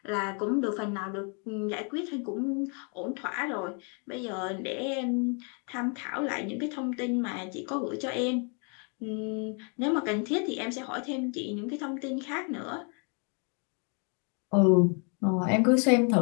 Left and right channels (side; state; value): right; quieter; 38.0 dB